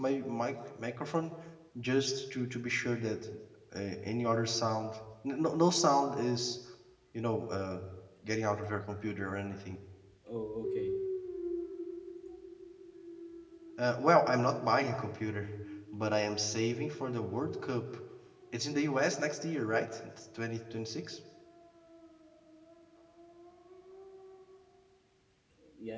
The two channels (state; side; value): identical; both; correlation 1.00